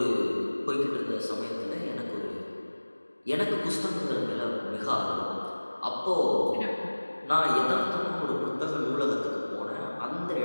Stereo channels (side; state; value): both; inverted; correlation -1.00